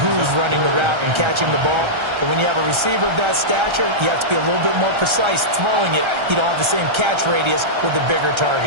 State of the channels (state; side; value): late; left; 1.3 ms